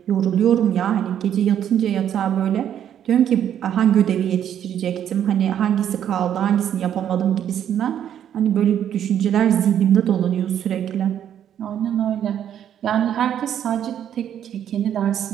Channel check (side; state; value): left; quieter; 9.9 dB